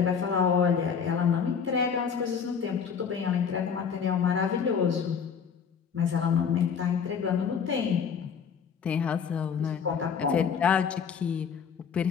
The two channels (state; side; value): quieter; right; 6.8 dB